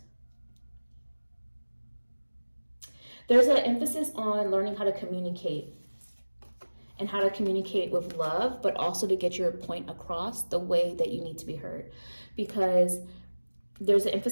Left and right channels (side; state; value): both; inverted; correlation -1.00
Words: There's an emphasis on learning how to communicate and how to communicate with love, but also to get your point across the way that you need to be heard. Because there's an